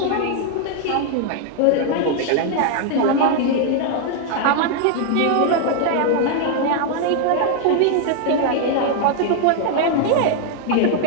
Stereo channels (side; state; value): both; different; correlation 0.00